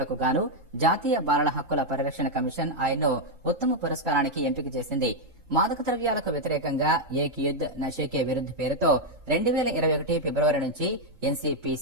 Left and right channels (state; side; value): late; left; 3.7 ms